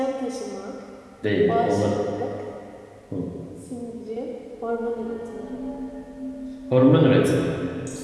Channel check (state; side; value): identical; both; correlation 1.00